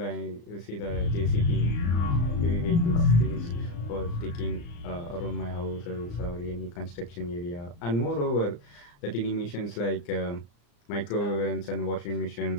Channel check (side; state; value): right; late; 35 ms